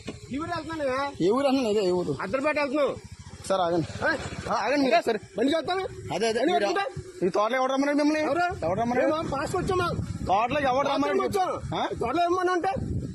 ఏ ఊరు అన్నా? అదే ఏ ఊరు? అద్దరిపేట వెళ్తున్నావు సార్. ఆగండి ఆగండి సరే బండి చేస్తాను. అదే అదే ఈ తోటలో ఎవరు రమ్మన్నాడు మిమ్మల్ని? ఎవరు రమ్మన్నాడు? పాస్ వచ్చామా? తోటలోకి ఎవరు రమ్మన్నాడు? తోటలో ఏమన్నా అంటే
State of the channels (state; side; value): identical; both; correlation 1.00